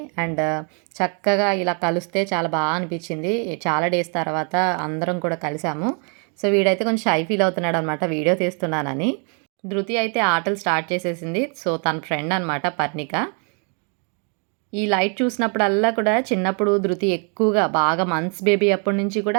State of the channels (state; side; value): quieter; left; 38.5 dB